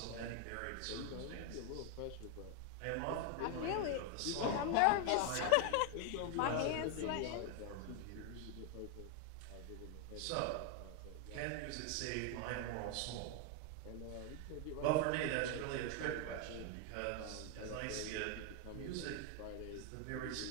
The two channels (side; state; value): both; different; correlation 0.00